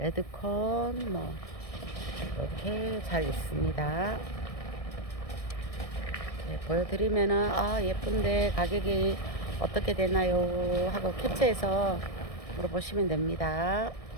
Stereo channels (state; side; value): late; right; 1.6 ms